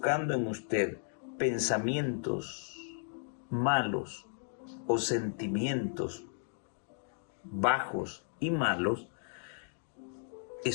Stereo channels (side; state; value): right; silent; 55 dB below the other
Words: en usted pensamientos malos o sentimientos bajos y malos,